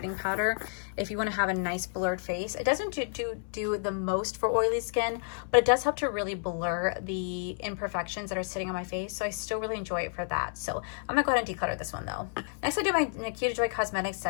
powder if you want to have a nice blurred face. It doesn't do the most for oily skin, but it does help to really blur the imperfections that are sitting on my face. So I still really enjoy it for that. So I'm gonna go ahead and declutter this one though. Next, I do my Nikita Joy Cosmetics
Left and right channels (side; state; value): right; silent; 58 dB below the other